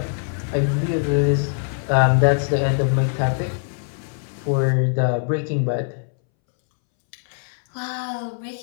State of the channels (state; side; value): silent; right; 64 dB below the other